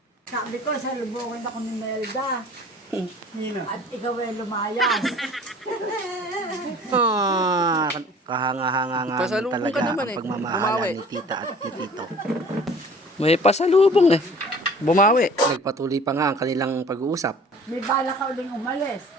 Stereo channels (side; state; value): both; normal; correlation 0.48